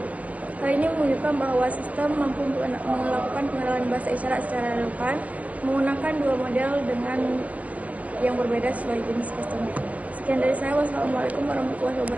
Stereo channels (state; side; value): late; left; 0.070 ms